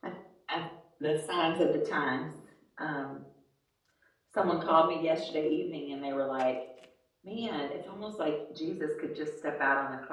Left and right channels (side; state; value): both; identical; correlation 1.00